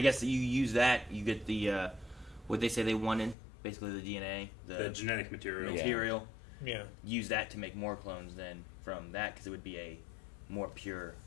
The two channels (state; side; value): drops out; right; at 3.4 s